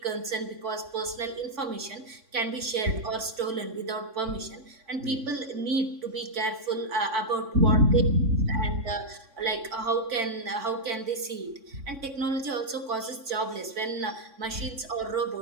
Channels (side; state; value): left; late; 3.6 ms